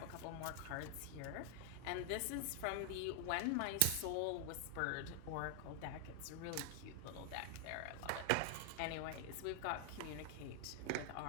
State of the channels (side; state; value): both; different; correlation 0.00